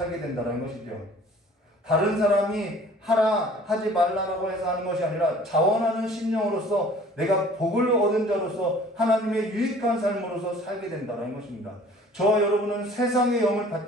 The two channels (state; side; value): normal; both; correlation 0.50